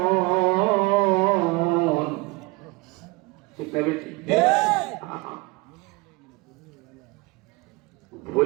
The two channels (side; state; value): left; quieter; 24.2 dB